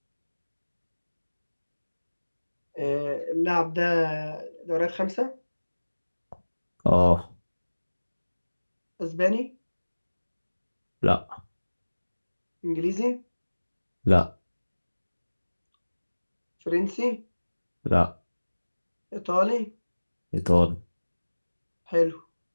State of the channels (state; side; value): inverted; both; correlation -1.00